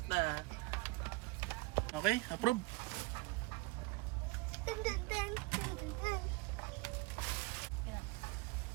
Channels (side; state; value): left; quieter; 22.7 dB